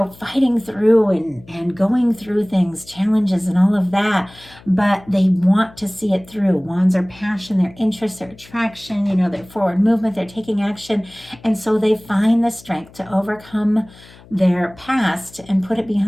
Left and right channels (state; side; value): noise; left; hum, 23 dB below the sound